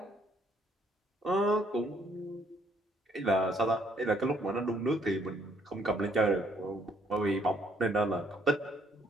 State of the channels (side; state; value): both; normal; correlation 0.67